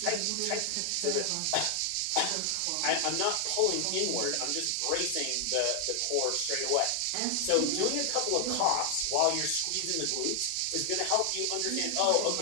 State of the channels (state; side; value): different; both; correlation 0.00